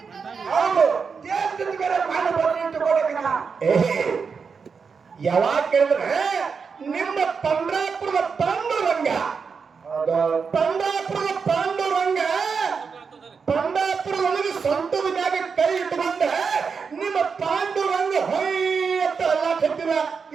ಹೌದು, ಯಾವಾಗ ಕೇಳಿದ್ರೆ ನಿಮ್ಮ ಪಂಡ್ರಾಪುರದ ಪಾಂಡುರಂಗ, ಪಂಡ್ರಾಪುರದೊಳಗೆ ಸ್ವಂತದ ಮ್ಯಾಗ ಕೈ ಇಟ್ಟುಕೊಂಡ ನಿಮ್ಮ ಪಾಂಡುರಂಗ ಹೊಯ್ಯತ್ತ ಎಲ್ಲ ಕತ್ತಿರ.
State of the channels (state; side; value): quieter; left; 5.6 dB